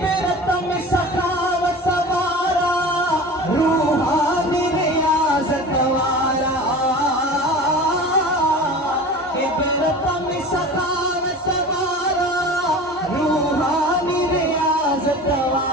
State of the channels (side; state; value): both; normal; correlation 0.36